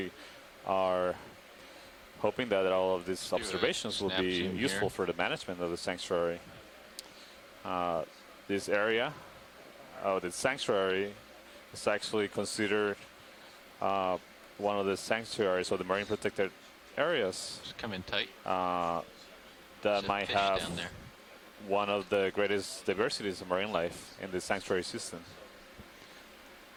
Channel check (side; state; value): both; identical; correlation 1.00